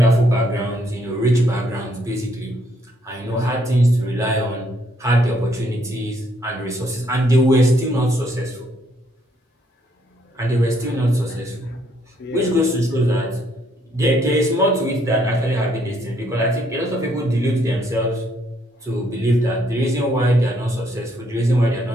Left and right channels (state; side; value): normal; both; correlation 0.70